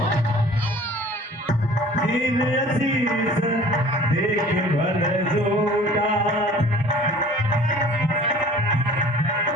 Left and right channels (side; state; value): both; normal; correlation 0.48